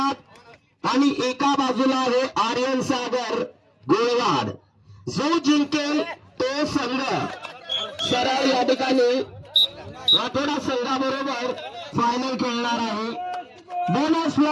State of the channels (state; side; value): identical; both; correlation 1.00